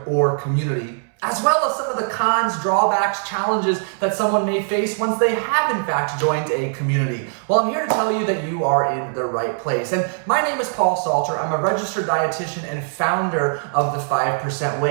or community, as well as some of the cons, drawbacks, challenges that someone may face once they have in fact joined a community. Well, I'm here to tell you that you are in the right place. And my name is Paul Salter. I'm a registered dietitian and founder of the 5%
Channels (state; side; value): silent; left; 65 dB below the other